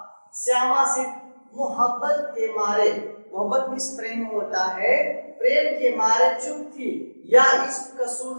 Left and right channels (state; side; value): inverted; both; correlation -1.00